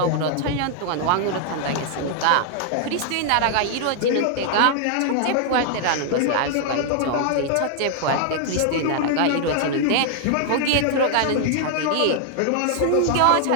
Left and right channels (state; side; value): different; both; correlation 0.00